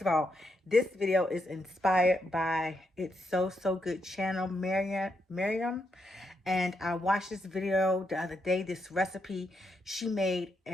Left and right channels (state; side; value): normal; both; correlation 0.81